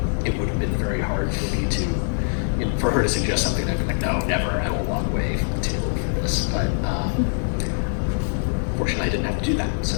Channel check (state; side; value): silent; right; digital silence